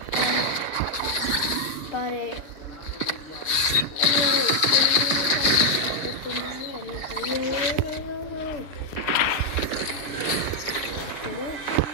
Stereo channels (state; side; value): late; right; 6.8 ms